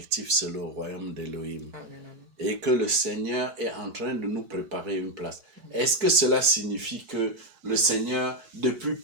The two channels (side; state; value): left; late; 4.6 ms